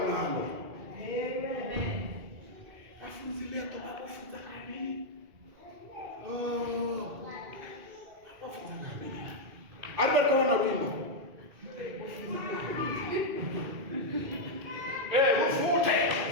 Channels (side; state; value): left; late; 2.4 ms